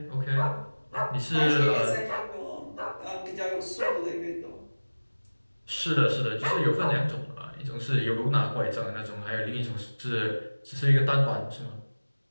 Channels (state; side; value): inverted; both; correlation -1.00